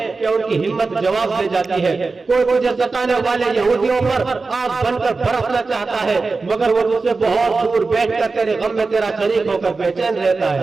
کہ ان کی ہمت جواب دے جاتی ہے۔ کوئی تجھے ستانے والے یہودیوں پر آگ بن کر برسنا چاہتا ہے مگر وہ تجھ سے بہت دور بیٹھ کر تیرے غم میں تیرا شریک ہو کر بے چین رہتا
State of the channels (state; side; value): quieter; left; 4.0 dB